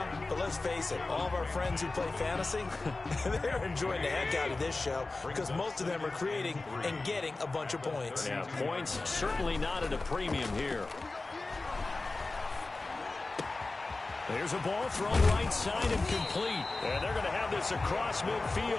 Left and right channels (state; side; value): quieter; right; 3.4 dB